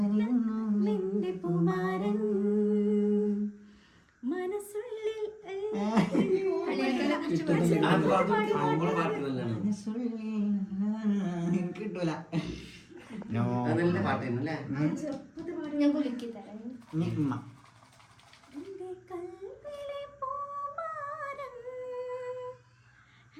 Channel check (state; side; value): identical; both; correlation 1.00